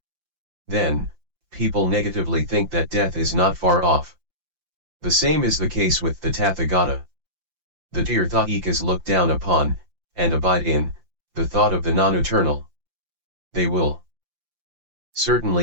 Then, people negatively think that death is not far off. The same is the case with the Tathagata. The Tirthaikas look down upon, and abide in, the thought of the non-eternal. They will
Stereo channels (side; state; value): left; late; 5.8 ms